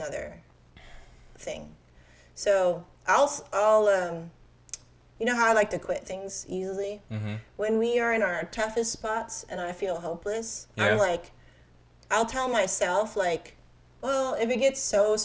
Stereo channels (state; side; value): identical; both; correlation 1.00